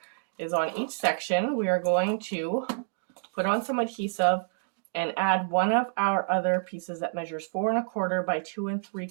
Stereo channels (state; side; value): silent; left; digital silence